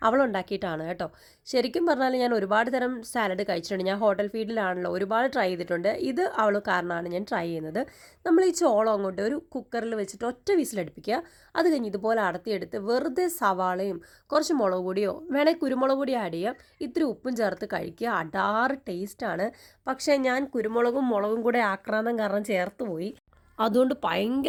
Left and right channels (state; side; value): identical; both; correlation 1.00